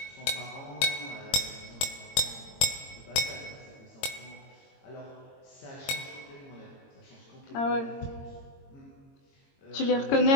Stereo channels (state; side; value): late; right; 22 ms